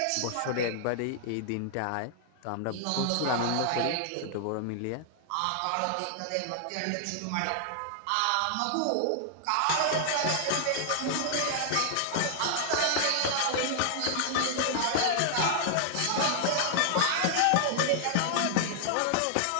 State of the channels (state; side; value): different; both; correlation -0.01